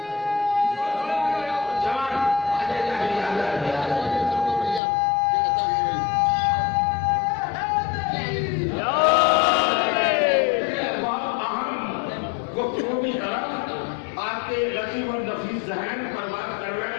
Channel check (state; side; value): drops out; right; at 4.8 s